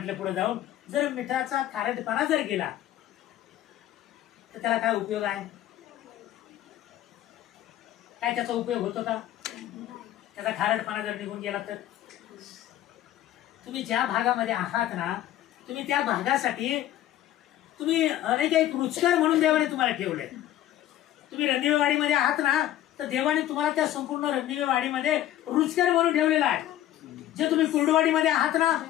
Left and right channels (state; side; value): quieter; right; 12.9 dB